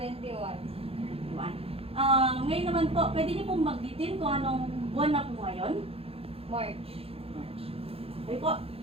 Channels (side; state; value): left; late; 0.28 ms